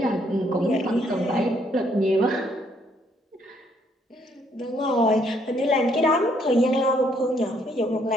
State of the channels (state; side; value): normal; both; correlation 0.69